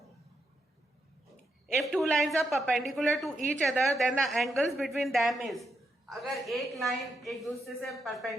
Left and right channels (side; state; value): both; normal; correlation 0.82